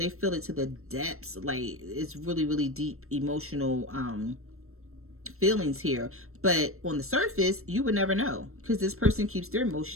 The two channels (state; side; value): late; left; 0.62 ms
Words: feel it to the depths. Like, it's really, really deep emotional feelings here. But on the surface, you would never know because this person keeps their